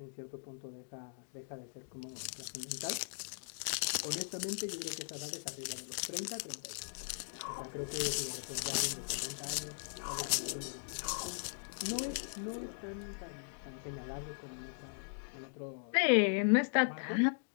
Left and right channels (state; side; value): silent; right; digital silence